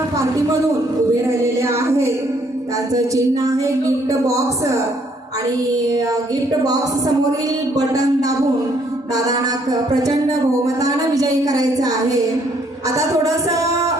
पार्टीमधून उभे राहिलेले आहेत. त्यांचं चिन्ह आहे गिफ्ट बॉक्स आणि गिफ्ट बॉक्स समोरील बटन दाबून दादांना प्रचंड बहुमतानं विजयी करायचं आहे. आता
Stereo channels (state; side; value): normal; both; correlation 0.67